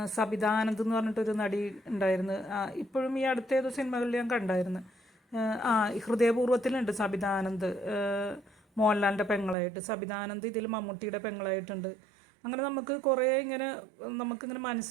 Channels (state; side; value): drops out; left; at 9.6 s